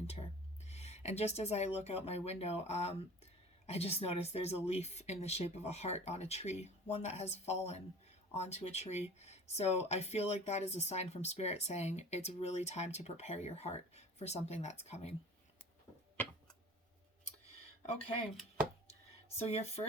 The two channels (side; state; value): both; normal; correlation 0.42